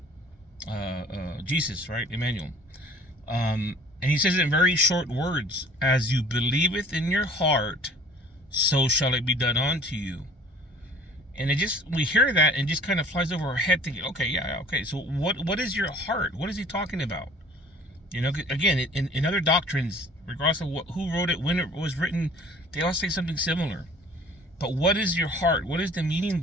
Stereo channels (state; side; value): normal; both; correlation 0.50